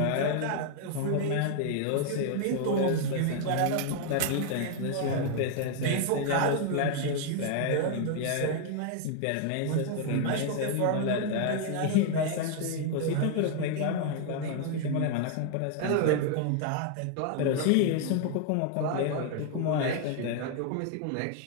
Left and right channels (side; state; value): both; different; correlation 0.00